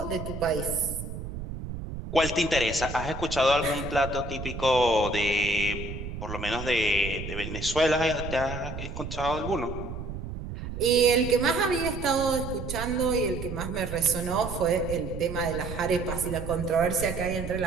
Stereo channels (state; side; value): noise; right; rumble, 8 dB below the sound